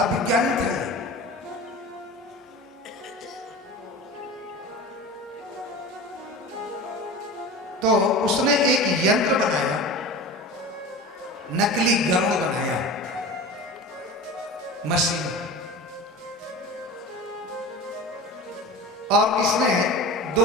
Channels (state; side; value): normal; both; correlation 0.33